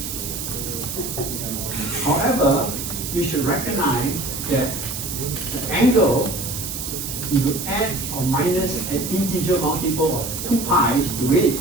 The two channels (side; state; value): right; noise; hiss, 6 dB below the sound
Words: However, you should recognize that the angle if you add or minus an integer multiple of 2 pi to it,